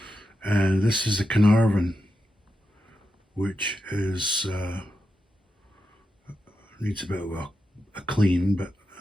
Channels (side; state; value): both; normal; correlation 0.88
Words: And this is the Carnarvon, which is needs a bit of a clean, but